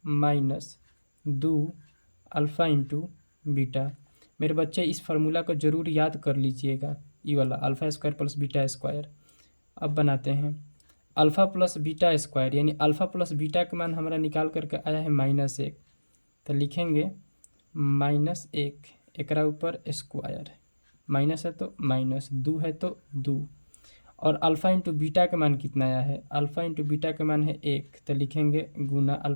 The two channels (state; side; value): inverted; both; correlation -1.00